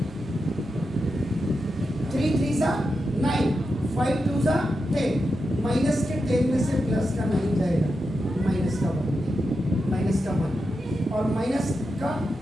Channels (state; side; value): normal; both; correlation 0.88